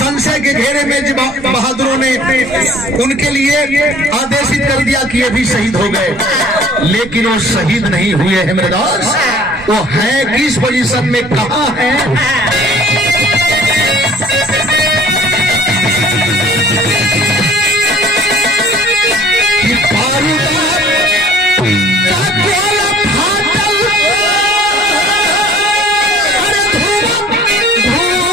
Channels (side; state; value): both; normal; correlation 0.52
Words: के घेरे में बहादुरों ने उनके लिए आदेशित कर दिया कि ये भी शहीद हो गए, लेकिन वो शहीद नहीं हुए हैं मेरे दोस्त। वो है किस पोजीशन में, कहां है?